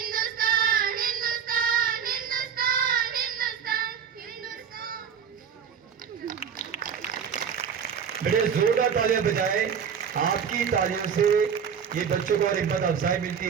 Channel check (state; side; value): quieter; left; 7.4 dB